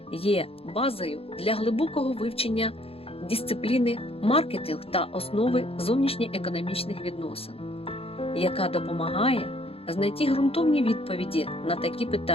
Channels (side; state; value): right; late; 0.28 ms